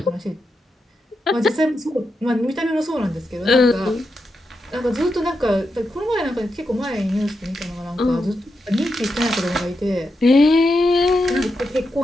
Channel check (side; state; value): both; normal; correlation 0.86